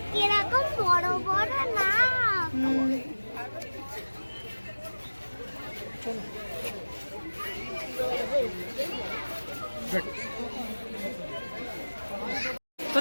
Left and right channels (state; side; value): inverted; both; correlation -1.00